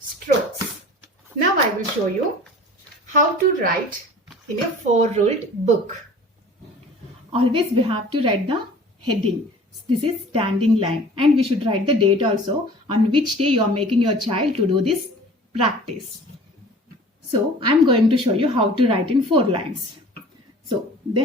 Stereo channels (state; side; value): normal; both; correlation 0.45